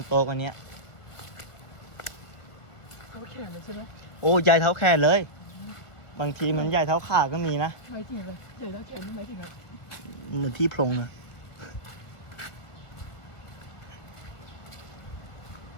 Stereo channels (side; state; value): right; late; 1.6 ms